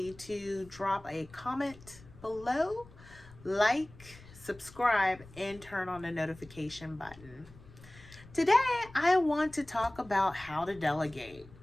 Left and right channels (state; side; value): noise; left; rumble, 21 dB below the sound